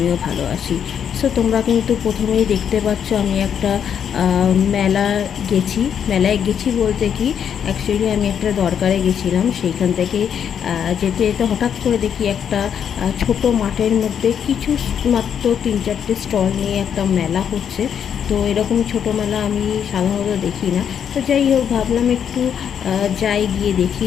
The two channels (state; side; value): quieter; right; 8.2 dB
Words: ভালো আছি। সো তোমরা কিন্তু প্রথমেই দেখতে পাচ্ছ আমি একটা মেলায় গেছি বলতে কি, অ্যাকচুয়ালি আমি একটা দরকারে গেছিলাম। সেইখান থেকে যেতে যেতে হঠাৎ করে দেখি একটা ছোট মাঠের মধ্যে কিছু মাত্র 3-4টে স্টল নিয়ে একটা মেলা হচ্ছে। তো এরকম ছোটো মেলা আমি সাধারণত দেখি না। তো যাই হোক, ভাবলাম একটু যাই, গিয়ে দেখি।